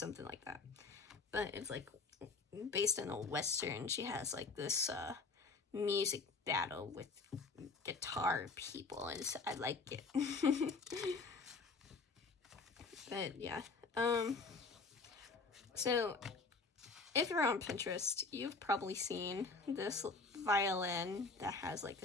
like that, but it's like based in a Western. She has like this music battle with guitar people, and so I like it. But yeah, so if you're on Pinterest, you've probably seen this violin that has like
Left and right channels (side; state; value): right; quieter; 4.1 dB